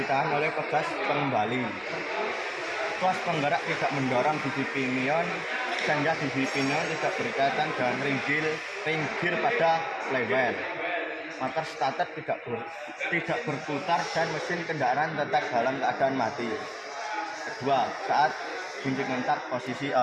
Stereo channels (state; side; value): identical; both; correlation 1.00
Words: oleh pegas pengembali. Tuas penggerak tidak mendorong gigi pinion sehingga gigi pinion tidak berkaitan dengan ring gear pada flywheel. Motor starter tidak berputar dan mesin kendaraan tetap dalam keadaan mati. Kedua, saat kunci kontak posisi